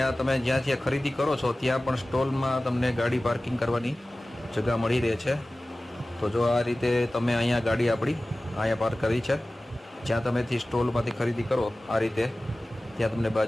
આ તમે જ્યાંથી ખરીદી કરો છો ત્યાં પણ સ્ટોલમાં તમને ગાડી પાર્કિંગ કરવાની જગ્યા મળી રહે છે. તો જો આ રીતે તમે અહીંયા ગાડી આપણી અહીંયા પાર્ક કરી છે જ્યાં તમેથી સ્ટોલમાંથી ખરીદી કરો આ રીતે ત્યાં તમને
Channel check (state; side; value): normal; both; correlation 0.97